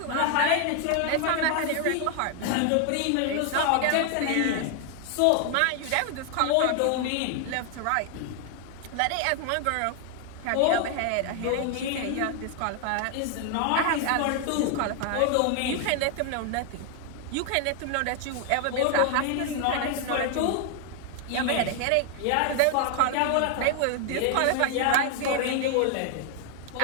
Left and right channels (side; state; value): both; different; correlation 0.00